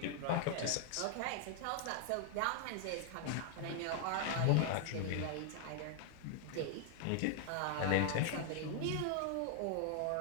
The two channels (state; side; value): different; both; correlation 0.00